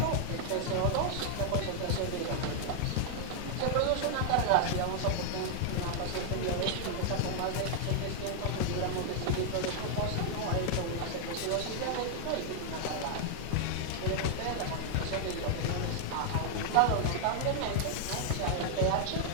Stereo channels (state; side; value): different; both; correlation 0.00